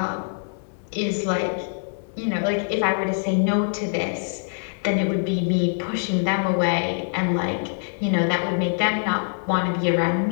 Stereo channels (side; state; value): right; silent; 61 dB below the other